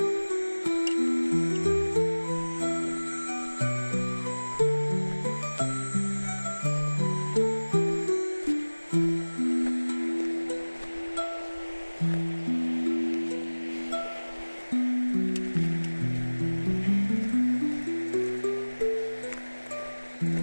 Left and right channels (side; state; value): both; inverted; correlation -1.00